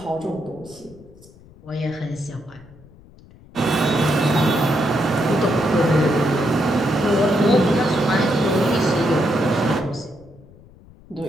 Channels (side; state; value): left; noise; rumble, 24 dB below the sound